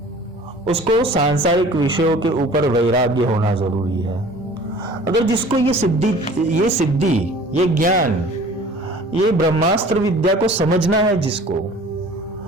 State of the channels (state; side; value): normal; both; correlation 0.47